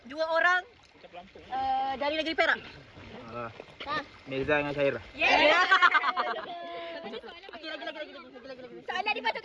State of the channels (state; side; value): identical; both; correlation 1.00